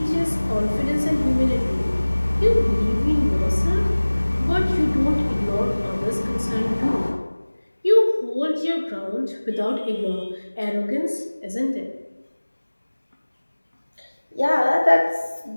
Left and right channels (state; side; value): inverted; both; correlation -1.00